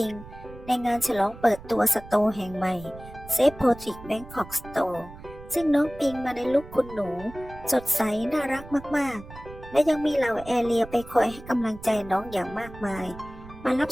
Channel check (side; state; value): right; noise; rumble, 16 dB below the sound